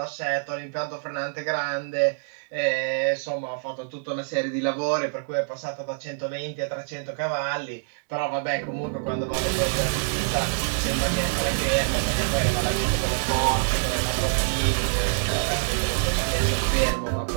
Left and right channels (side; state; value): left; silent; digital silence